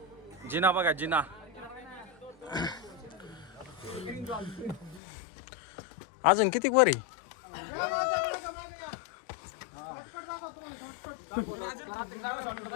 जिना बघा जिना. अजून किती वर आहे.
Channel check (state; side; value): drops out; right; at 5.0 s